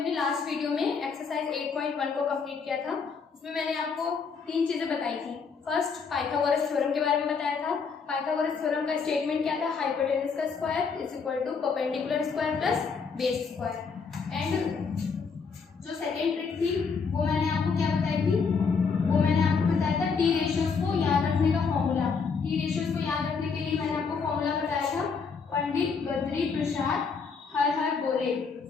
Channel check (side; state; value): right; quieter; 5.4 dB